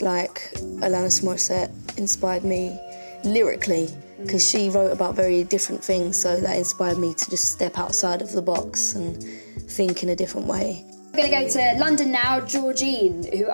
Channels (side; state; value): both; inverted; correlation -1.00